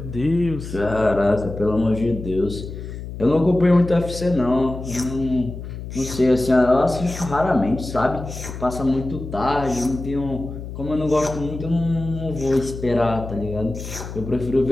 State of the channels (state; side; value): noise; left; hum, 9 dB below the sound